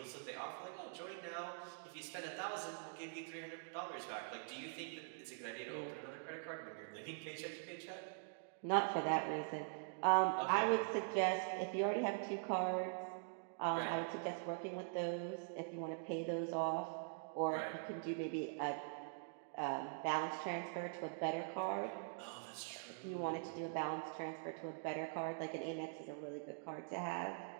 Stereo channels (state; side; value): silent; left; digital silence